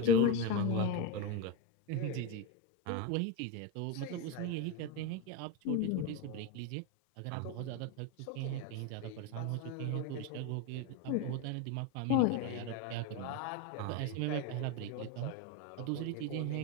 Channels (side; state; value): both; different; correlation 0.04